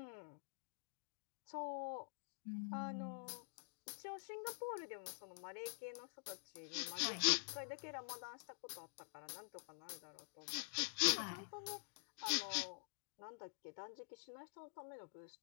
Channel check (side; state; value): right; silent; digital silence